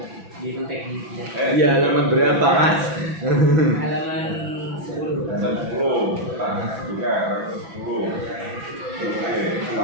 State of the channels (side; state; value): left; late; 6.0 ms